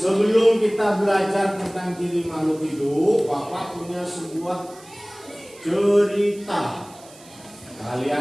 kita belajar tentang ciri makhluk hidup, Bapak punya sebuah cerita.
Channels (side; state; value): right; noise; hiss, 23 dB below the sound